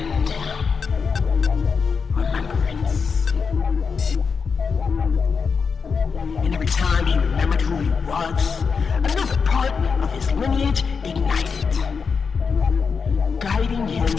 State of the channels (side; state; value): right; quieter; 5.5 dB